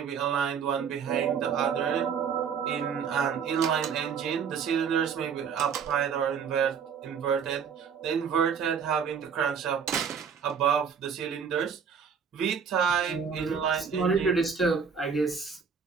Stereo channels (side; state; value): left; quieter; 6.7 dB